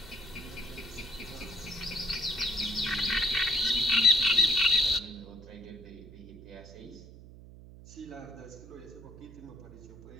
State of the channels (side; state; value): right; noise; hum, 17 dB below the sound